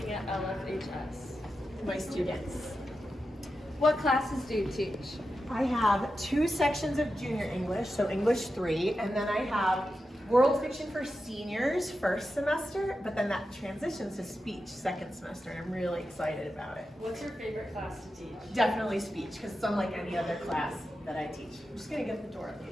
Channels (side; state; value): both; normal; correlation 0.90